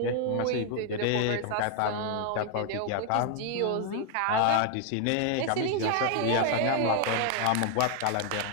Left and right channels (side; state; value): both; different; correlation 0.00